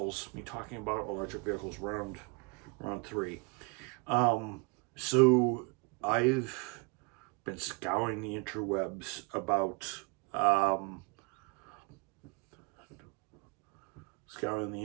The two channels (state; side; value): quieter; left; 30.4 dB